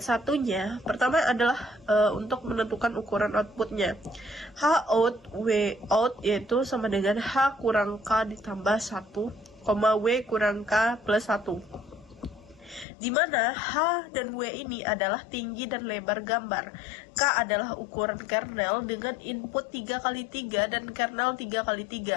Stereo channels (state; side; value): drops out; right; at 12.9 s